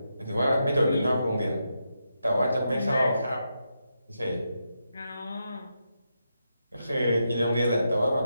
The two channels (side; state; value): both; inverted; correlation -0.85